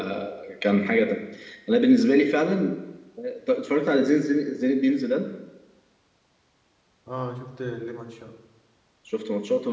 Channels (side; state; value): both; identical; correlation 1.00